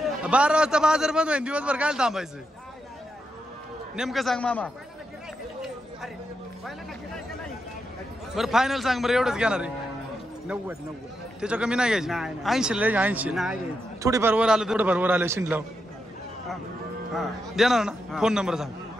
12 वाजता बाजार बंद होईल. दिवसभर काय थांबायचं? नेमकं सांग मामा. बरं फायनल सांग बरं. एवढंच घेणार आहे. 90. त्याच्या कमी नाही घ्यायची. 80 ला 80. नाही थोडीफार वर आलं थोडंफार वर आलं शिंडलाव देणार ना. फोन नंबर सांग.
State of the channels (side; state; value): both; normal; correlation 0.84